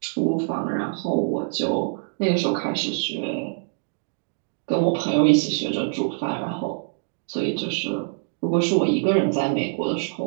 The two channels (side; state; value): left; silent; digital silence